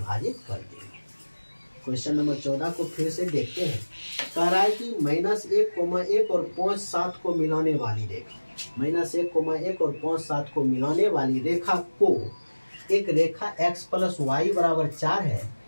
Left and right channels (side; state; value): both; inverted; correlation -1.00